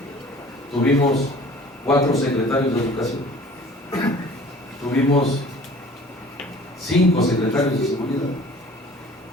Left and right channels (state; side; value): normal; both; correlation 0.48